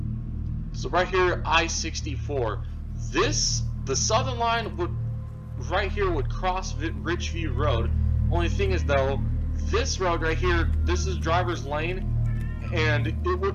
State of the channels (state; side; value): identical; both; correlation 1.00